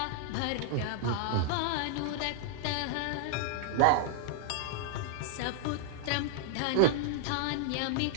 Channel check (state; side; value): different; both; correlation -0.01